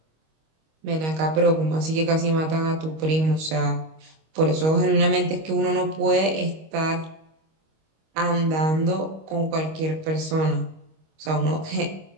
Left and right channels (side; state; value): left; late; 25 ms